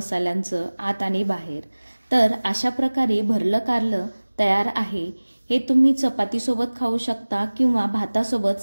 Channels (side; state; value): both; inverted; correlation -1.00